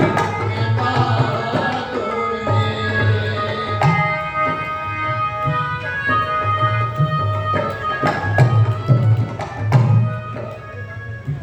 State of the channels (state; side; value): identical; both; correlation 1.00